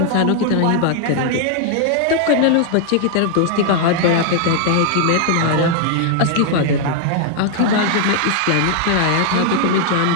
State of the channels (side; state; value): both; different; correlation 0.00